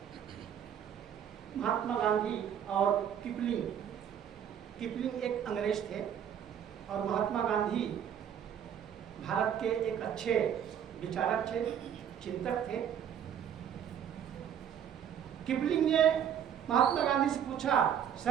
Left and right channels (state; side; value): quieter; left; 9.0 dB